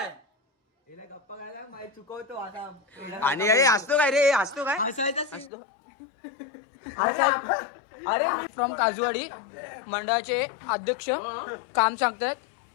हिला गप्पा करायला माहिती चुकवतो आता. आणि अरे हसतो काय रे. हसतो काय हसतो. अरे फ्रॉम काजूवाडी मंडळाचे अध्यक्ष काम सांगतायत.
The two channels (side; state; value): right; drops out; at 5.5 s